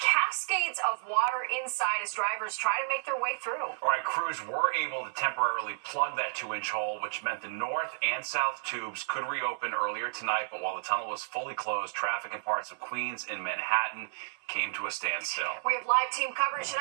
of water inside as drivers try to make their way through. All right, crews were able to temporarily plug that 2-inch hole, which meant the north and south tubes could reopen earlier tonight. But while the tunnel was fully closed, traffic in parts of Queens and Manhattan came to a standstill. We have live team coverage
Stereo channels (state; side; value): silent; left; 57 dB below the other